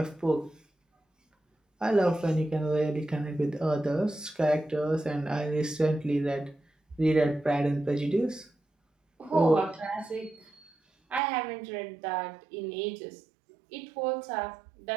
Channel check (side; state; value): left; drops out; at 11.2 s